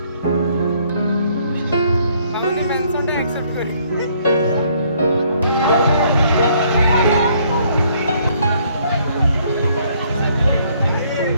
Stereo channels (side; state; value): both; inverted; correlation -0.65